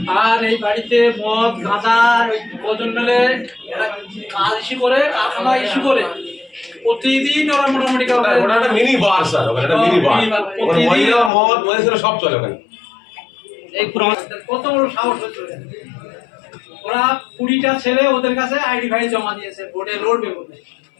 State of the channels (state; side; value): drops out; right; at 11.3 s